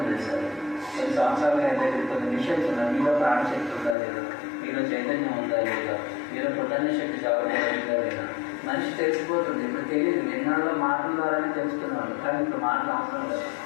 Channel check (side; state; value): right; drops out; at 4.0 s